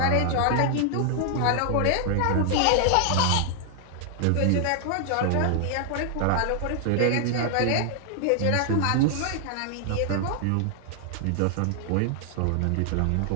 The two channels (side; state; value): both; different; correlation 0.00